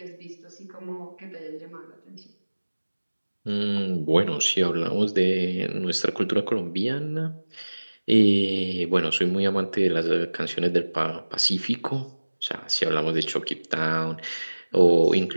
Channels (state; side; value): inverted; both; correlation -1.00